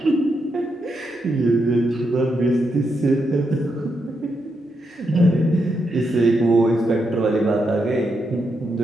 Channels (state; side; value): normal; both; correlation 0.82